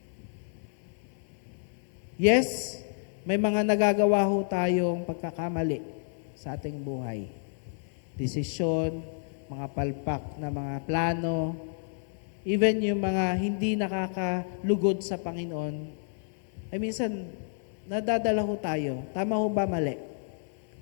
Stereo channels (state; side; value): silent; right; 58 dB below the other